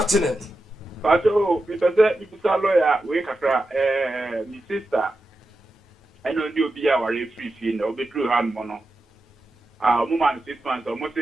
Pato, Mr. Lawyer, we kakra, my sister. I know you be our free fee, no be true hand mono. Woman 6 months, almost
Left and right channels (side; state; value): both; normal; correlation 0.91